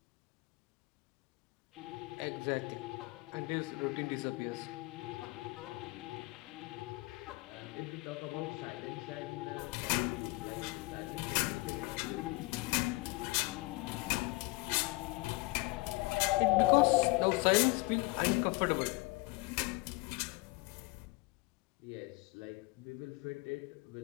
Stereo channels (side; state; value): right; quieter; 23.6 dB